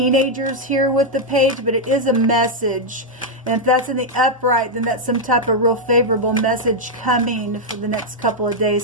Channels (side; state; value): both; normal; correlation -0.01